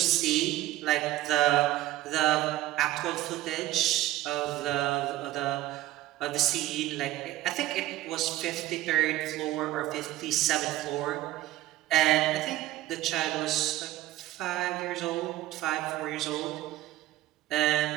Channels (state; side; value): quieter; left; 15.7 dB